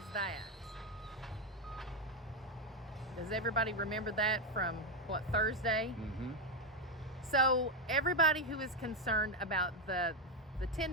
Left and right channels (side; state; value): both; normal; correlation 0.06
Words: that? Does everybody remember that from what, Thursday? So everybody who is concerned about the